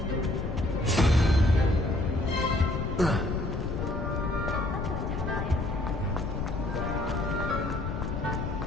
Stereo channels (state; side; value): noise; left; rumble, 3 dB below the sound